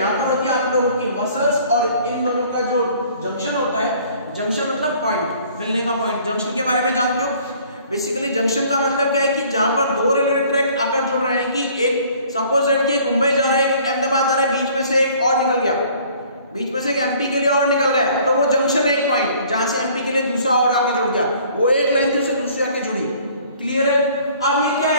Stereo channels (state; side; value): inverted; both; correlation -0.55